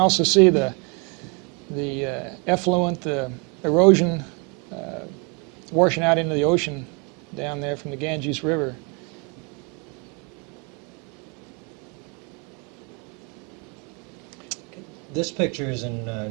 see the effluent, the erosion washing out into the ocean down there from the Ganges River. This picture is in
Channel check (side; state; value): left; quieter; 33.2 dB